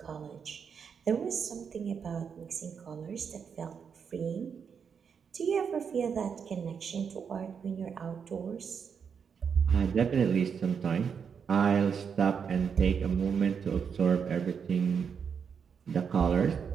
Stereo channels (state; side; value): quieter; left; 6.7 dB